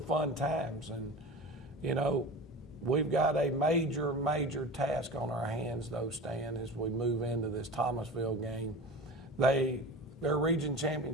fun times, and, you know, we've got a major task on our hands, though, Stan, as we move into this Thomasville game. Their region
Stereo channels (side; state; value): both; normal; correlation 0.33